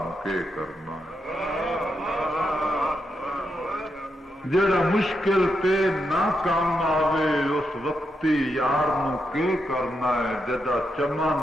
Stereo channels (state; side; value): normal; both; correlation 0.84